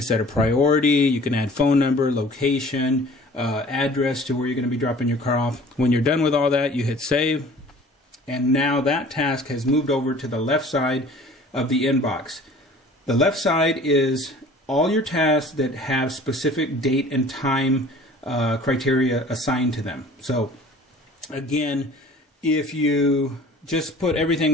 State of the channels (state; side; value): normal; both; correlation 0.48